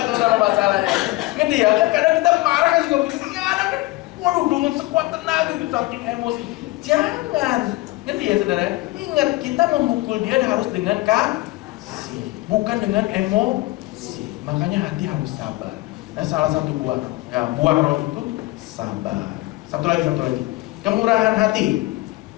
saudara masalahnya. Ngerti ya? Kan kadang kita marah kan juga begitu, ya anak kan, waduh dengan sekuat tenaga itu saking emosi. Jangan. Ngerti ya saudara? Ingat, kita memukul dia harus dengan kasih, bukan dengan emosi. Makanya hati harus sabar. Nah, salah satu buah roh itu sabar. Satu lagi. Kemurahan hati.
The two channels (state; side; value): quieter; right; 20.5 dB